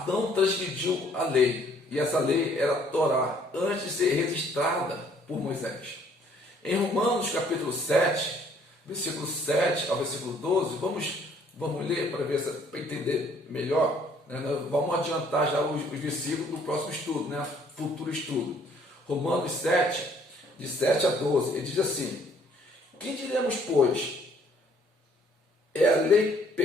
transgrediu a lei. E essa lei era a Torá, antes de ser registrada por Moisés. Em Romanos capítulo 7, versículo 7 ao versículo 12, vamos ler para entender melhor. Né? Vamos adiantar já os versículos do próximo estudo, né? Futuro estudo. Romanos 7, de 7 a 12, ele diz assim: que diremos, pois? É a lei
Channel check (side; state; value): both; normal; correlation 0.61